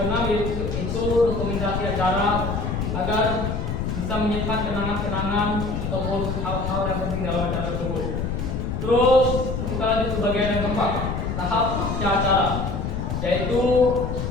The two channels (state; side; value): noise; left; rumble, 2 dB below the sound